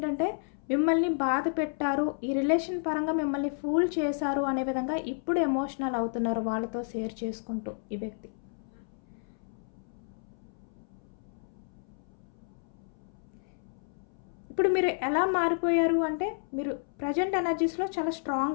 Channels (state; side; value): silent; right; 57 dB below the other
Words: మిమ్మల్ని బాధ పెట్టారు, ఈ రిలేషన్ పరంగా మిమ్మల్ని ఫూల్ చేశారు అనే విధంగా ఇప్పుడు ఎమోషనల్ అవుతున్నారు వాళ్ళతో షేర్ చేసుకుంటూ ఈ వ్యక్తి. ఇప్పుడు మీరు ఎలా మారిపోయారు అంటే మీరు ప్రజెంట్ ఎనర్జీస్లో చాలా